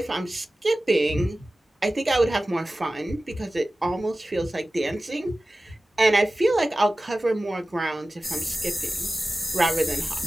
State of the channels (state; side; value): normal; both; correlation 0.96